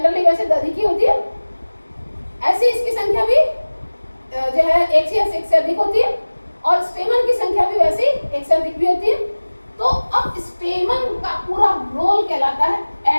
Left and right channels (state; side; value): inverted; both; correlation -1.00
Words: वैसे अधिक ही होती है। ऐसी इसकी संख्या भी जो है एक से अधिक होती है, और स्टेमन की संख्या भी वैसी एक से अधिक भी होती है। तो अब स्टेमन का पूरा रोल कहलाता है